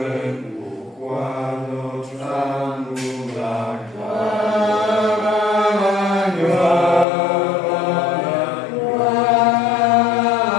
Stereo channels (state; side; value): drops out; right; at 7.1 s